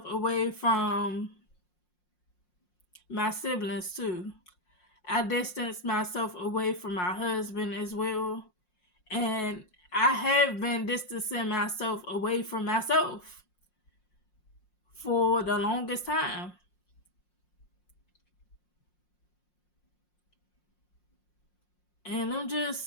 away from my siblings too. I distanced myself away from my husband as well. And I have been distancing myself away from myself for the longest time. And I'm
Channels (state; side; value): late; right; 5.6 ms